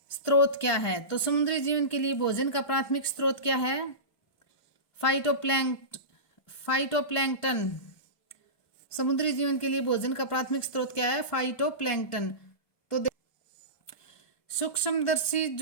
स्रोत क्या है? तो समुद्री जीवन के लिए भोजन का प्राथमिक स्रोत क्या है? फाइटोप्लैंक्टन। समुद्री जीवन के लिए भोजन का प्राथमिक स्रोत क्या है? फाइटोप्लैंक्टन। तो सूक्ष्मदर्शी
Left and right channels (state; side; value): late; right; 1.2 ms